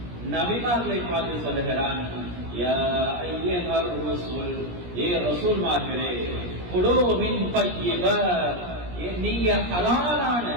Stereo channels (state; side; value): late; left; 17 ms